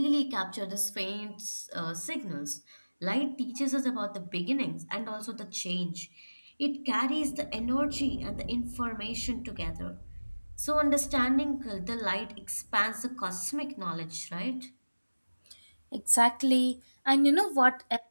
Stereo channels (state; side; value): inverted; both; correlation -1.00